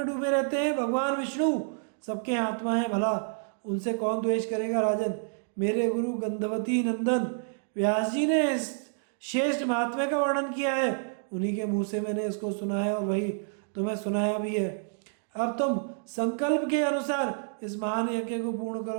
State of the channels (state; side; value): silent; left; digital silence